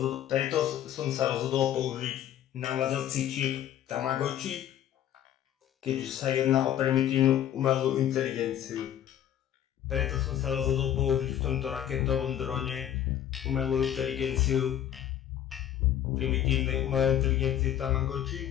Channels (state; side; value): quieter; right; 10.9 dB